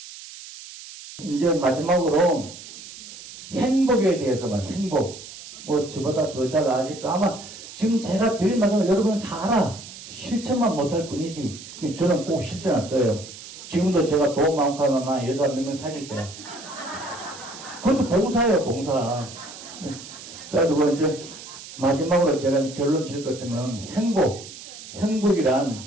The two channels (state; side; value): noise; right; hiss, 14 dB below the sound